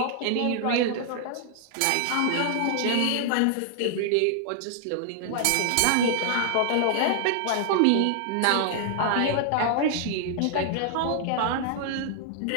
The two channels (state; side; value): different; both; correlation -0.01